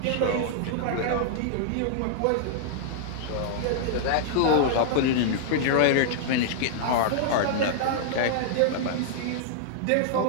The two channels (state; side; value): different; both; correlation -0.01